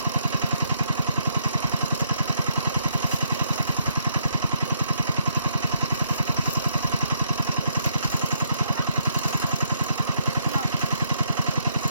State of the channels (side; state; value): both; inverted; correlation -0.73